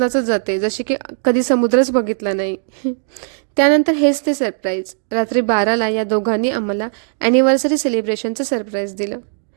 जाते, जशी की कधी समुद्रच बघितला नाही. त्यानंतर हेच ते सरप्राईज. रात्री 12ला या दोघांनी आम्हाला ॲनिव्हर्सरी सेलिब्रेशनचं सरप्राईज दिलं.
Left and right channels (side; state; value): left; silent; digital silence